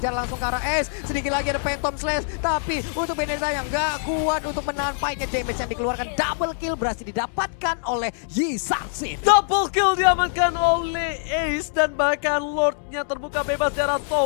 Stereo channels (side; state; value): right; silent; digital silence